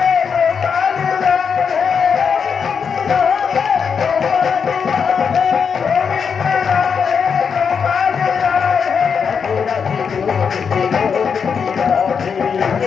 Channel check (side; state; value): right; quieter; 6.4 dB